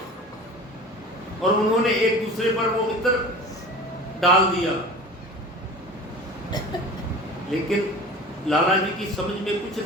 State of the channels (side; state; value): both; normal; correlation 0.37